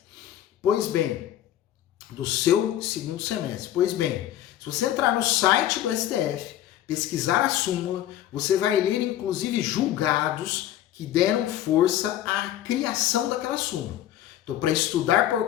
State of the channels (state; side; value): quieter; right; 12.4 dB